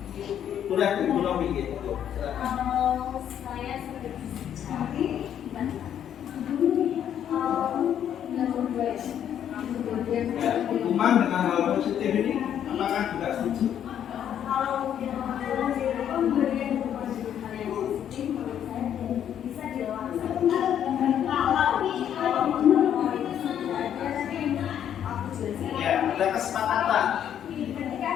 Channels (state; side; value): quieter; right; 9.7 dB